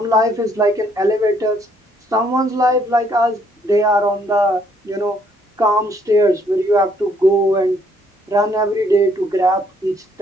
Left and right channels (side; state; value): both; normal; correlation 0.67